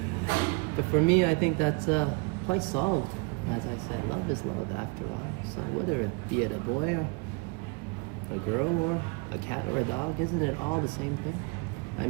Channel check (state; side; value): quieter; left; 31.9 dB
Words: But for me, I think that's quite solved. As I said, love is love after all. So whether it be a boy or a girl or a cat or a dog, isn't it all the same thing? I